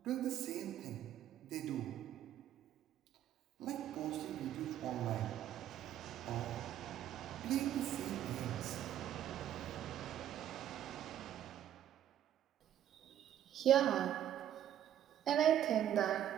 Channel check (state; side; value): quieter; left; 11.0 dB